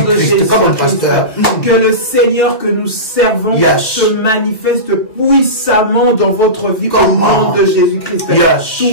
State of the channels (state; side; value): late; right; 2.0 ms